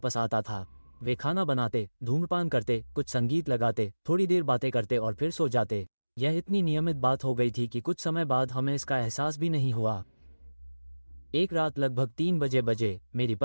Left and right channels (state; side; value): inverted; both; correlation -1.00